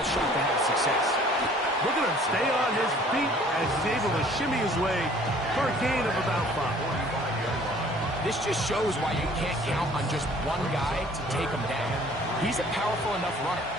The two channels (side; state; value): both; normal; correlation 0.54